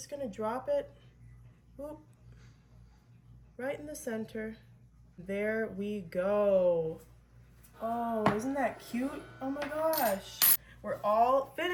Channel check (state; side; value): identical; both; correlation 1.00